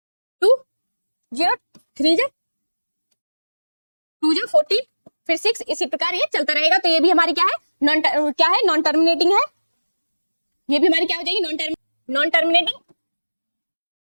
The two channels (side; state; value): both; inverted; correlation -1.00